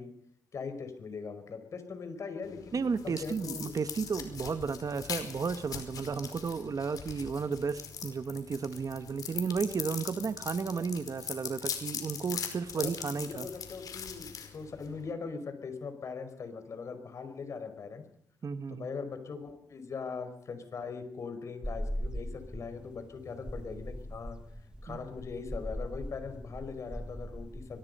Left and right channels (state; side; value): normal; both; correlation 0.70